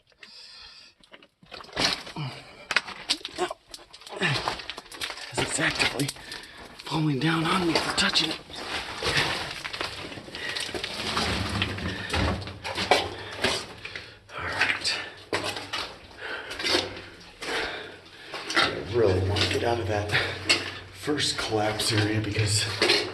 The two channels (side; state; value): both; identical; correlation 1.00